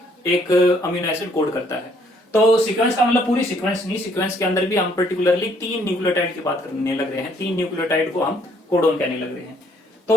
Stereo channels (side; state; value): both; normal; correlation 0.65